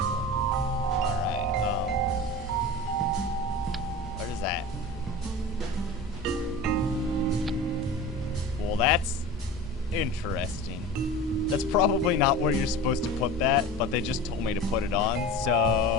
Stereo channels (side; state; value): both; normal; correlation 0.33